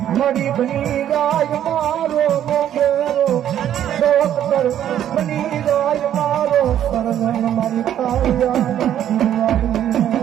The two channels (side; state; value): left; quieter; 10.7 dB